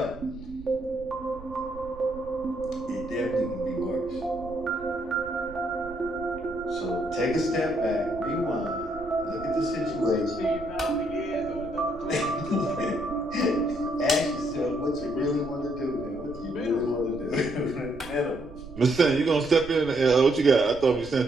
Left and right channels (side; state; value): right; noise; rumble, 16 dB below the sound